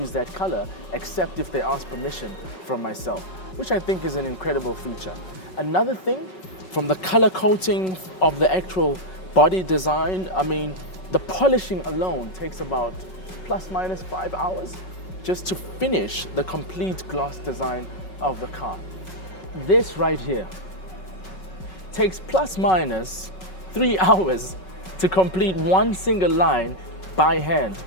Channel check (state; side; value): late; right; 5.4 ms